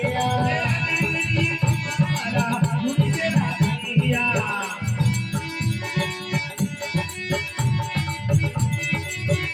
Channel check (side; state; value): both; identical; correlation 1.00